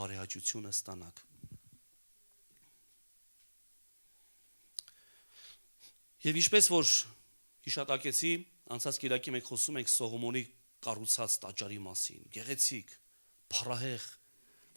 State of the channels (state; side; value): inverted; both; correlation -1.00